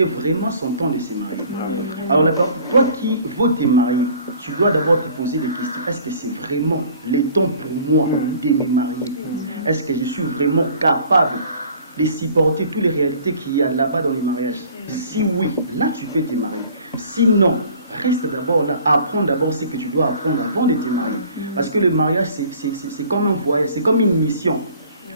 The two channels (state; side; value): inverted; both; correlation -0.51